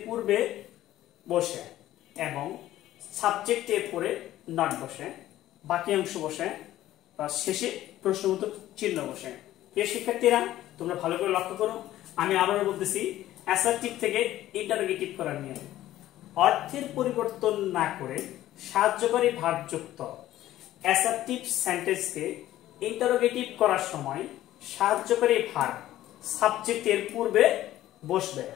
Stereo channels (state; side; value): quieter; right; 14.1 dB